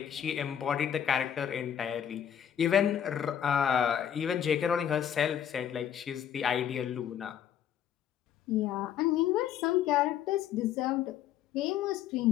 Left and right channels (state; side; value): quieter; right; 9.6 dB